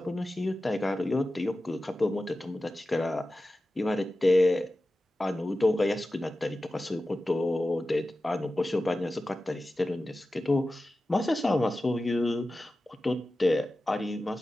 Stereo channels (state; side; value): normal; both; correlation 0.94